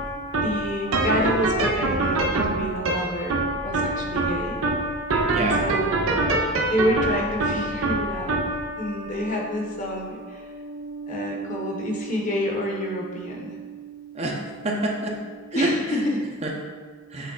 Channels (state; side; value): normal; both; correlation 0.29